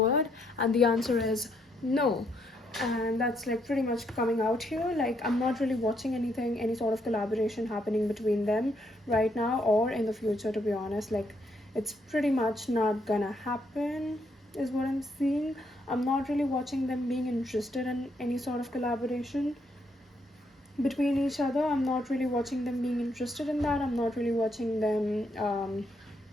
and the answer is no. And that's like pretty much coming out here. Like, I'm not really watching any sort of collaboration happening between them right now or in the future, to be honest. Like, it's pretty much not gonna happen, is what I'm seeing. I'm not really watching them being interested in any sort of collaboration between each other. I'm not really watching them being interested in that. I'm not really watching them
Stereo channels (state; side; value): normal; both; correlation 0.74